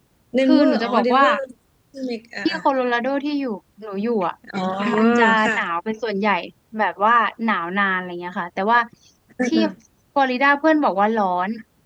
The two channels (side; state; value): both; identical; correlation 1.00